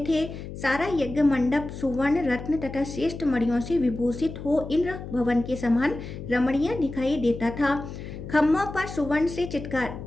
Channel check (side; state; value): left; noise; hum, 10 dB below the sound